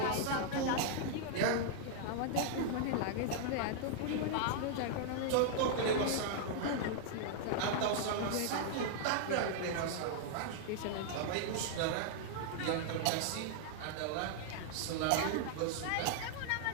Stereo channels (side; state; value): both; different; correlation -0.01